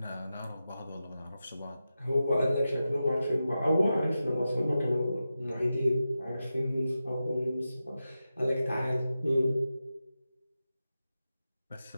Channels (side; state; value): both; inverted; correlation -0.92